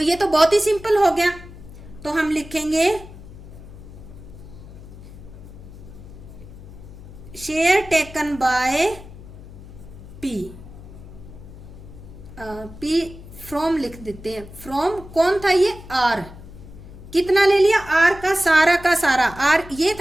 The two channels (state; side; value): noise; left; hum, 16 dB below the sound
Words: ये तो बहुत ही सिंपल हो गया, तो हम लिखेंगे share taken by P, P from लिख देते हैं, फ्रॉम कौन था ये? R, कितना ले लिया? R का सारा, R ये